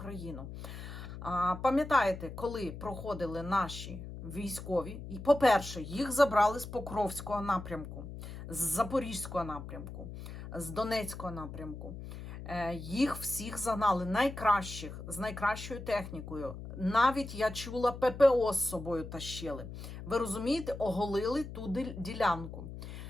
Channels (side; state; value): left; noise; hum, 10 dB below the sound